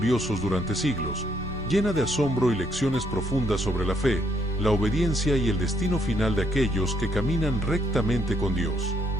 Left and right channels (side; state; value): both; normal; correlation 0.72